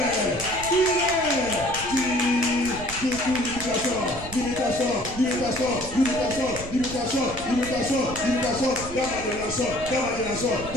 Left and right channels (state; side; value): noise; right; rumble, 12 dB below the sound